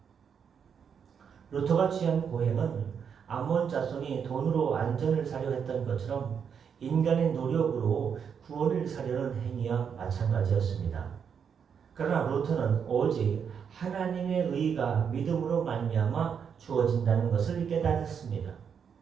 루터가 취한 고행은 암몬 자손이 돈으로 안전을 사려 했던 것처럼 인간의 노력으로 구원을 사려는 행위와 마찬가지였습니다. 그러나 루터는 오직 하나님의 의가 믿음으로 말미암아 주어진다는 것을 깨달았습니다.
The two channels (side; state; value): left; quieter; 7.2 dB